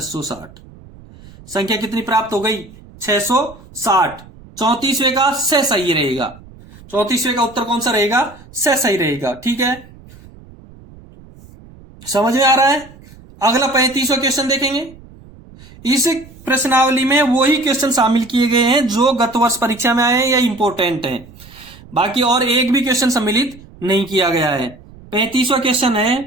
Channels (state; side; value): noise; right; rumble, 22 dB below the sound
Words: संख्या कितनी प्राप्त हो गई? 660। 34वें का से सही रहेगा। 34वें का उत्तर कौन सा रहेगा? से सही रहेगा। ठीक है, समझ में आ रहा है? अगला 35वां क्वेश्चन देखेंगे। इस प्रश्नावली में वही क्वेश्चन शामिल किए गए हैं जो गत वर्ष परीक्षा में आए हैं या इंपोर्टेंट हैं, बाकी और एक भी क्वेश्चन सम्मिलित नहीं किया गया है। 35वां क्वेश्चन है,